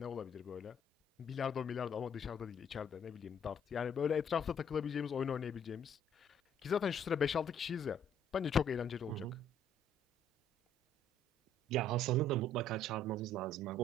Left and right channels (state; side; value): normal; both; correlation 0.62